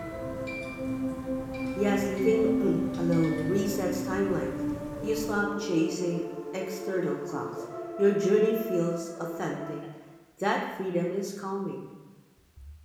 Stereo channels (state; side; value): identical; both; correlation 1.00